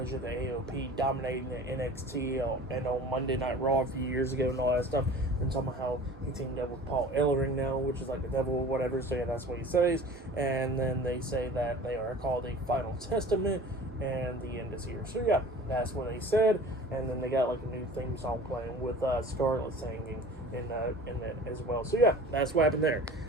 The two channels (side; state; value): both; normal; correlation 0.42